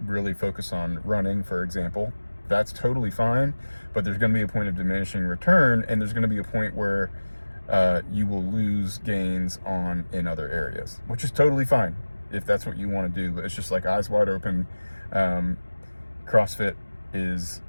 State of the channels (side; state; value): both; inverted; correlation -1.00